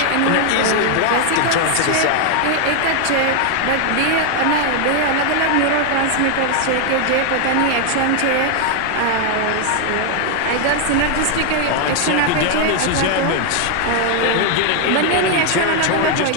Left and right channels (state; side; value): different; both; correlation 0.00